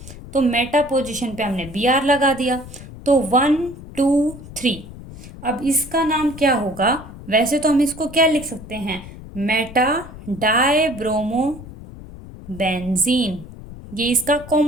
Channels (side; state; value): left; noise; rumble, 15 dB below the sound